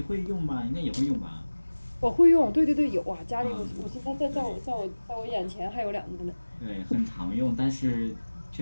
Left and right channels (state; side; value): inverted; both; correlation -1.00